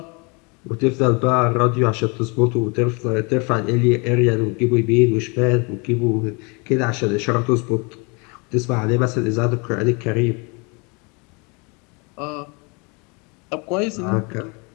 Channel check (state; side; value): quieter; right; 31.0 dB